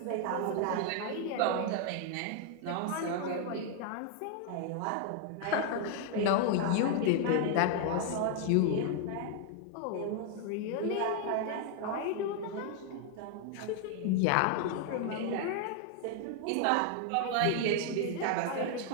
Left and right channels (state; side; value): different; both; correlation 0.00